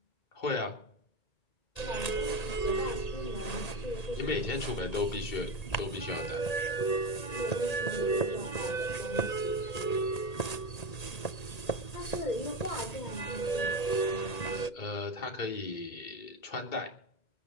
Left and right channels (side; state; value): right; late; 1.8 ms